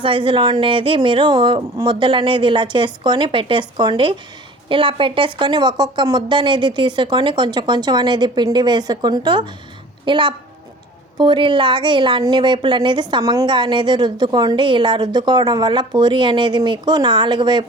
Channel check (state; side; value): normal; both; correlation 0.45